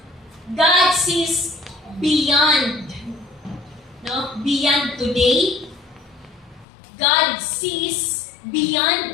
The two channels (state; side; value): drops out; right; at 6.7 s